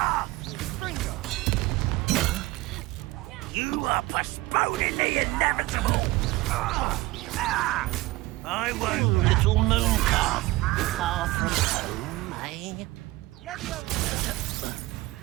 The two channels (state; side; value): quieter; left; 19.8 dB